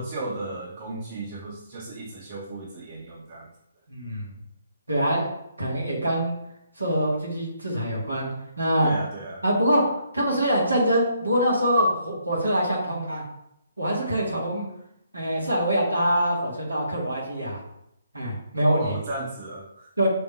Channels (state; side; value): inverted; both; correlation -0.73